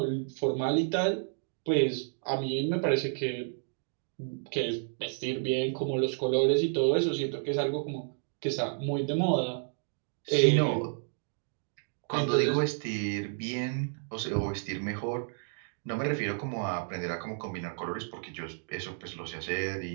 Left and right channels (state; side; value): silent; left; digital silence